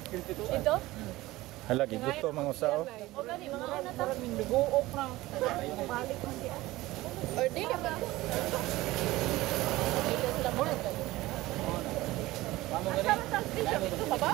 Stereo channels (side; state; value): left; quieter; 18.3 dB